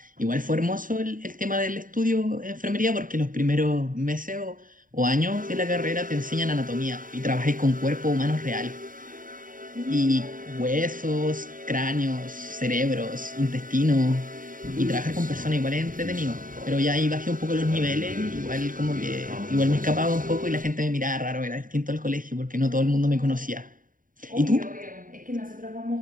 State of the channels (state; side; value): late; left; 0.39 ms